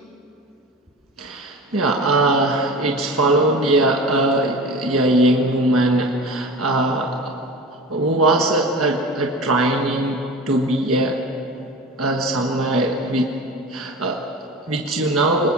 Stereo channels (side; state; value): both; normal; correlation 0.33